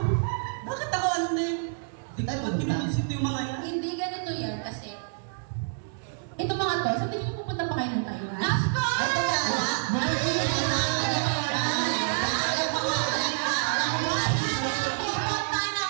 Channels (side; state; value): left; silent; digital silence